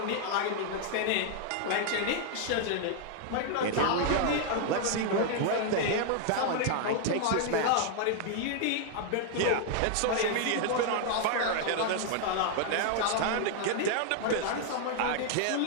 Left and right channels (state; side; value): different; both; correlation 0.00